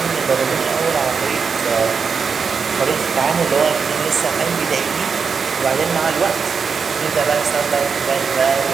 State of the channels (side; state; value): left; quieter; 5.7 dB